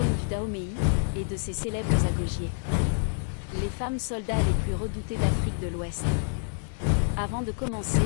du Dahomey et de ses célèbres agogiers. Les femmes soldats les plus redoutées d'Afrique de l'Ouest. Avant de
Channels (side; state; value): right; silent; 60 dB below the other